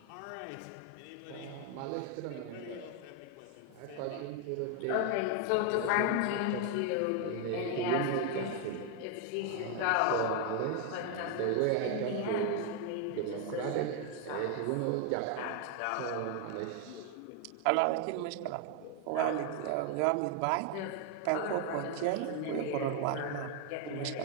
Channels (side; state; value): both; different; correlation 0.01